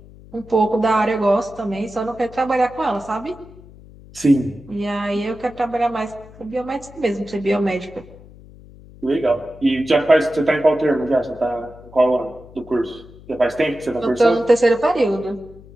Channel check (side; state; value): left; noise; hum, 21 dB below the sound